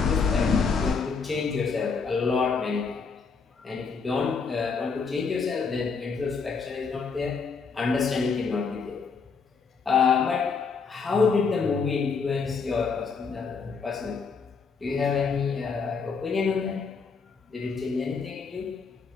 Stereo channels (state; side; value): quieter; right; 5.2 dB